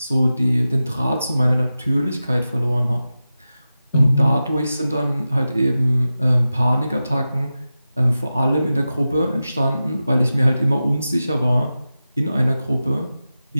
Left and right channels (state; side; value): inverted; both; correlation -0.93